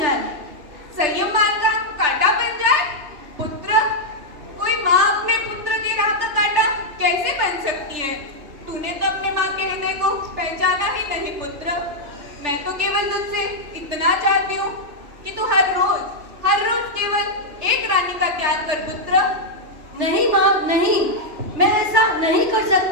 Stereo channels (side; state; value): left; late; 3.4 ms